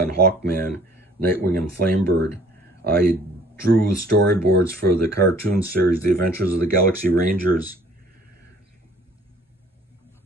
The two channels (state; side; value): normal; both; correlation 0.55